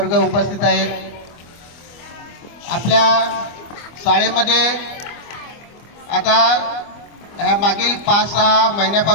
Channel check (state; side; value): late; right; 25 ms